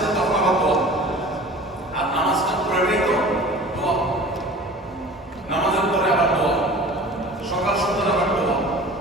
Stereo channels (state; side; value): normal; both; correlation 0.41